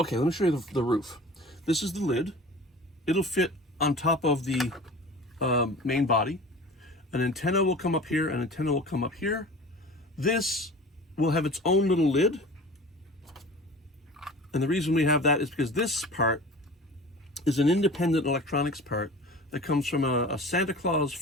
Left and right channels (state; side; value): normal; both; correlation 0.39